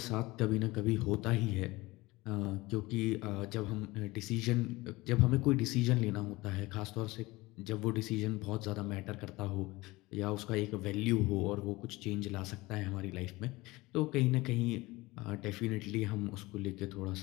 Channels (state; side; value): quieter; right; 21.0 dB